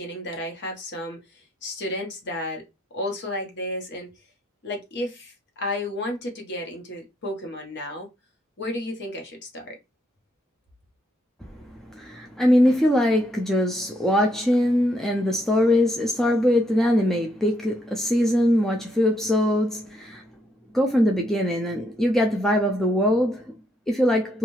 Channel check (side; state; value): both; normal; correlation 0.74